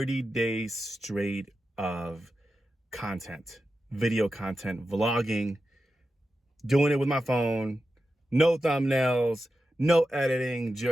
days straight of content, video content, vlogging, doing it with my phone, no thumbnails, no editing,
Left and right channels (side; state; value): both; normal; correlation 0.90